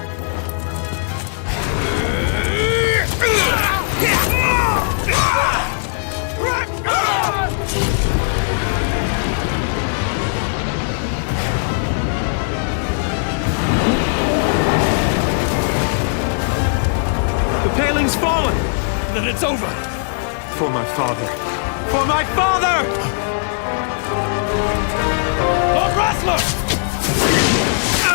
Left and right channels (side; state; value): right; silent; digital silence